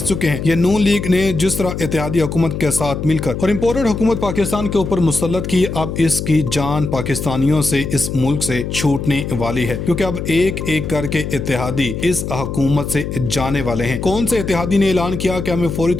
चुके हैं। ये नून लीग ने जिस तरह इत्तेहादी हुकूमत के साथ मिलकर और इम्पोर्टेड हुकूमत पाकिस्तान के ऊपर मुसल्लत की, अब इसकी जान पाकिस्तानियों से इस मुल्क से छूटने वाली है, क्योंकि अब एक एक करके इत्तेहादी इस हुकूमत से जाने वाले हैं। कौन से इत्तेहादी ने ऐलान किया कि हमें फौरी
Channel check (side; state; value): left; noise; hum, 5 dB below the sound